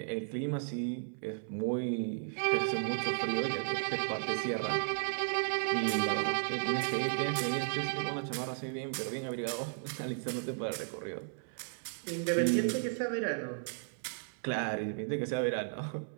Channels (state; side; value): silent; left; 55 dB below the other